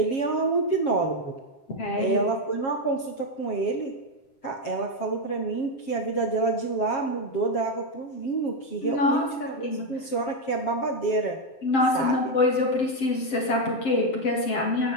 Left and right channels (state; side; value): late; right; 7.5 ms